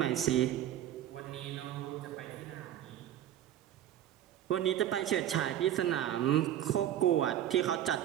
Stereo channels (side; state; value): left; quieter; 11.6 dB